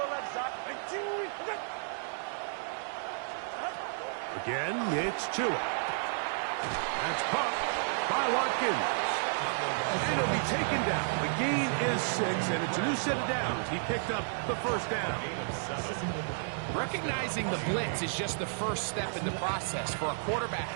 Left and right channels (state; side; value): silent; left; digital silence